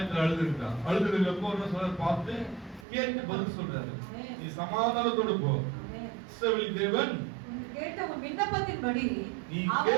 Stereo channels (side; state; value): left; drops out; at 2.9 s